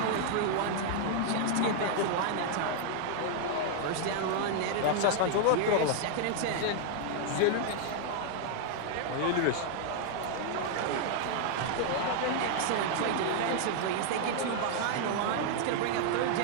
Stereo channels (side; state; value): both; different; correlation 0.00